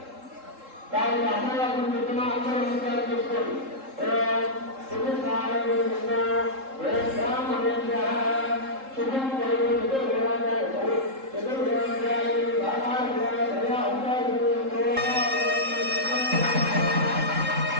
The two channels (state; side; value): late; left; 3.7 ms